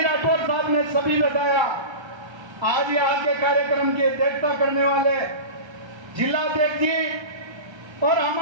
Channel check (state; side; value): late; left; 1.3 ms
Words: राठौर साहब ने सभी बताया। आज यहाँ के कार्यक्रम की अध्यक्षता करने वाले जिलाध्यक्ष जी और